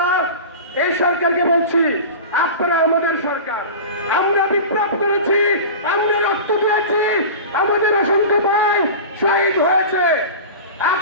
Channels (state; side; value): inverted; both; correlation -0.32